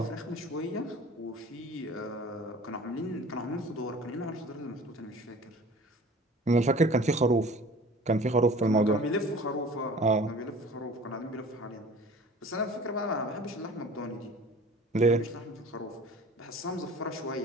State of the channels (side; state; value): both; normal; correlation 0.44